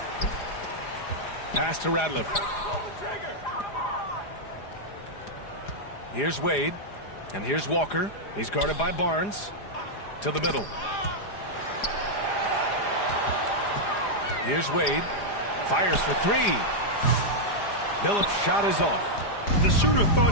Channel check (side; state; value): right; late; 4.9 ms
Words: Pass to Ratliff. Here's Wade. And here's Walker. He's guarded by Barnes. To the middle. Here's Wade. Fires for 3. Billups' shot is off. The shooter